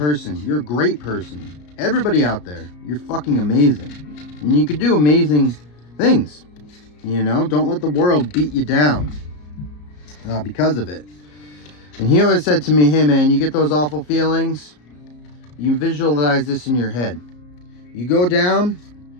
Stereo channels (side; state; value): right; late; 34 ms